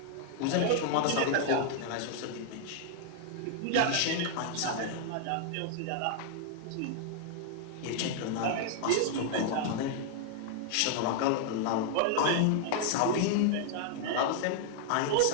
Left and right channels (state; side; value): different; both; correlation 0.00